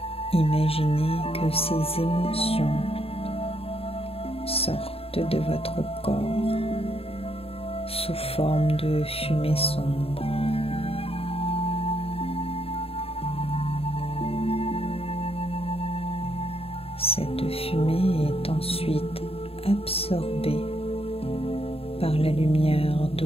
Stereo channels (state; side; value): late; right; 0.28 ms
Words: que ces émotions sortent de votre corps sous forme de fumée sombre. Cette fumée est ensuite absorbée par la lumière